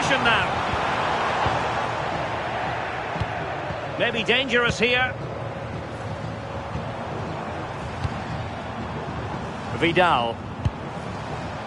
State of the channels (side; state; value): both; identical; correlation 1.00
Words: now. Maybe dangerous here. Vidal.